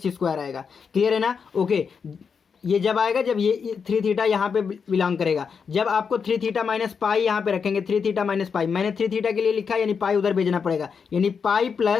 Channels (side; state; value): right; quieter; 6.1 dB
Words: आएगा। क्लियर है ना, ओके। ये जब आएगा जब ये 3 थीटा यहाँ पे बिलोंग करेगा। जब आपको 3 थीटा - π यहाँ पे रखेंगे, 3 थीटा - π, मैंने 3 थीटा के लिए लिखा, यानी पाई उधर भेजना पड़ेगा, यानी pi